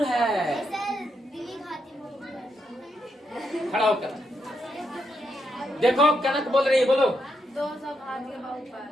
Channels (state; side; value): normal; both; correlation 0.81